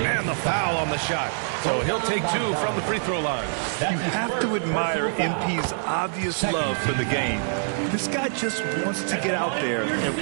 the foul on the shot. So he'll take 2 from the free throw line. You have to admire MP's obvious love for the game. This guy just wants to get out there and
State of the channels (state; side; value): silent; left; digital silence